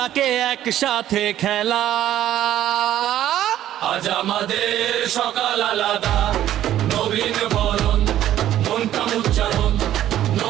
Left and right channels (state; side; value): quieter; left; 12.3 dB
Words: একসাথে খেলা আজ আমাদের সকাল আলাদা নবীন বরণ মনটা উচ্চারণ